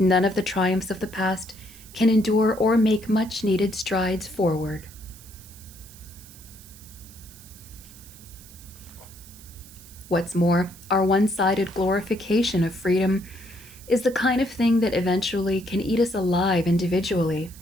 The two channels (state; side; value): noise; right; hiss, 20 dB below the sound